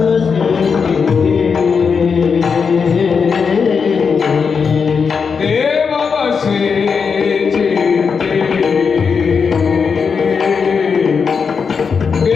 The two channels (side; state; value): right; quieter; 5.8 dB